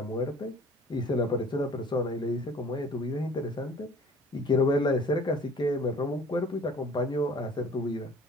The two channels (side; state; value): both; normal; correlation 0.49